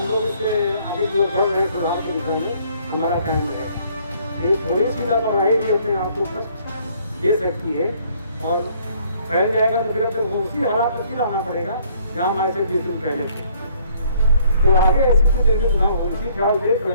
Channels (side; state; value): both; inverted; correlation -0.62